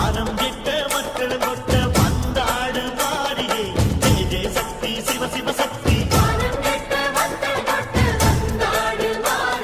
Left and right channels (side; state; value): both; identical; correlation 1.00